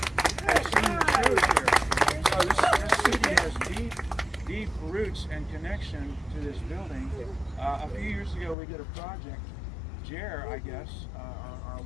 have seen shows here. So this city has deep roots and connection to this building. A few years ago, we did a project. Jer, I guess, our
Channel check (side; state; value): right; drops out; at 8.6 s